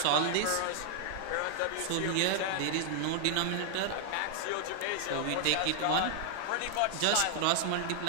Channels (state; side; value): different; both; correlation 0.00